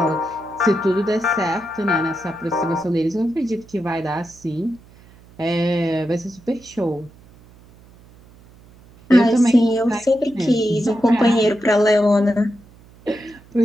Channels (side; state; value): right; noise; hum, 25 dB below the sound